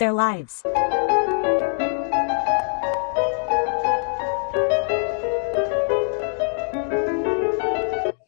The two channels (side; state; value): right; silent; digital silence